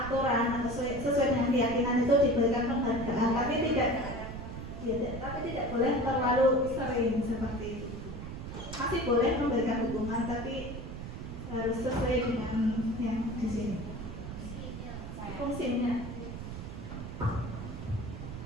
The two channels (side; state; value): right; noise; rumble, 8 dB below the sound